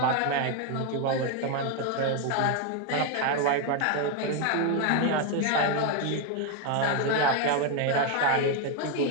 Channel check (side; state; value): both; different; correlation 0.01